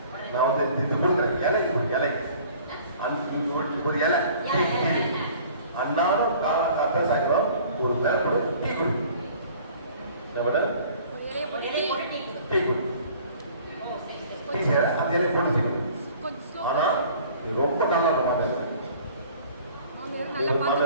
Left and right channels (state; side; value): inverted; both; correlation -0.51